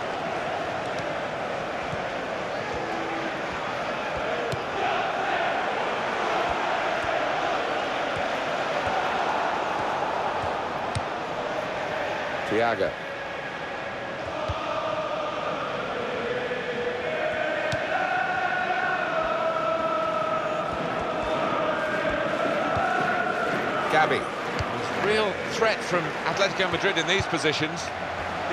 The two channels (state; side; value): identical; both; correlation 1.00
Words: Thiago. Gabby. Real threat from Atletico Madrid in these positions.